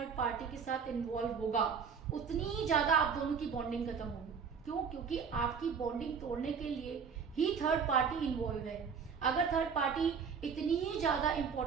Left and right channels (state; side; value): quieter; left; 6.3 dB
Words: पार्टी के साथ इन्वॉल्व होगा, उतनी ही ज्यादा आप दोनों की बॉन्डिंग खत्म होगी। क्यों? क्योंकि आपकी बॉन्डिंग तोड़ने के लिए ही थर्ड पार्टी इन्वॉल्व है। अगर थर्ड पार्टी इतनी ही ज्यादा